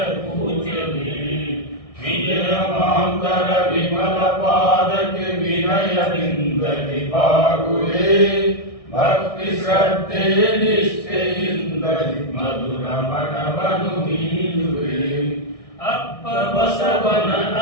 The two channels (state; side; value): late; right; 1.6 ms